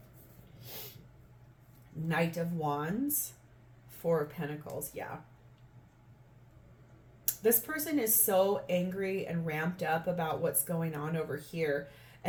Knight of Wands, Four of Pentacles. Yeah. This person is so angry and ramped up about what's going on over here.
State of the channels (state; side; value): identical; both; correlation 1.00